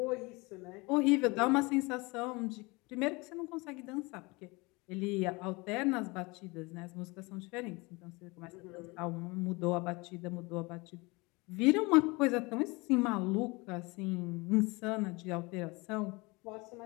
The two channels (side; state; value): right; quieter; 25.5 dB